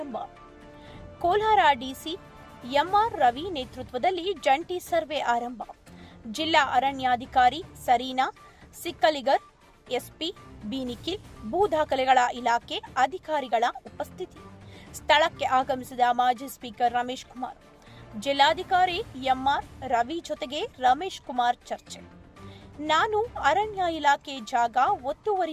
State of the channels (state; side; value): identical; both; correlation 1.00